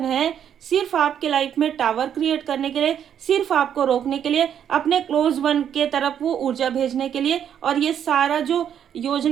है, सिर्फ आपके लाइफ में टावर क्रिएट करने के लिए, सिर्फ आपको रोकने के लिए, अपने क्लोज वन के तरफ वो ऊर्जा भेजने के लिए। और ये सारा जो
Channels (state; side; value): quieter; left; 9.1 dB